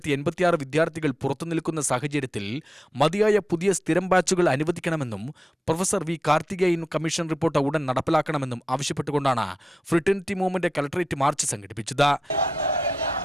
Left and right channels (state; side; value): normal; both; correlation 0.90